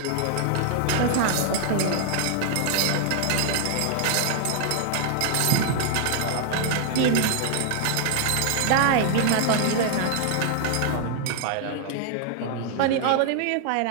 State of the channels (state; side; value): different; both; correlation 0.00